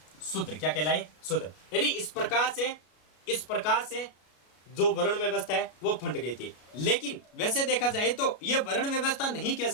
शूद्र। क्या कहलाए, शूद्र। यानी इस प्रकार से जो वर्ण व्यवस्था है वो फंट गई थी। लेकिन वैसे देखा जाए तो ये वर्ण व्यवस्था नहीं कह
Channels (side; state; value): right; late; 33 ms